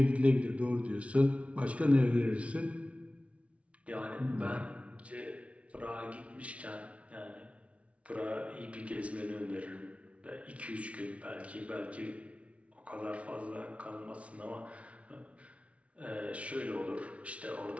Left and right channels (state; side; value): late; left; 0.063 ms